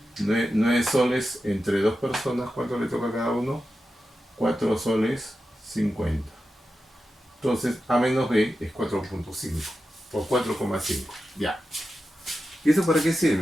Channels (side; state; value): both; normal; correlation 0.91